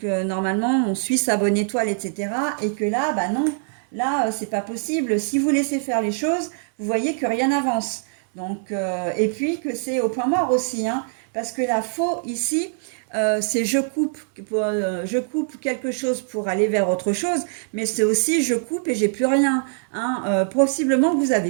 normalement on suit sa bonne étoile, etc. Et que là, bah non, là c'est pas possible. Si vous laissez faire les choses, vous voyez que rien n'avance. Donc, et puis que c'est au point mort aussi, hein, parce que la faux ici, c'est je coupe quelque chose pour aller vers autre chose, mais c'est aussi je coupe et j'ai plus rien. Hein. Possiblement que vous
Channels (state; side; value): silent; left; digital silence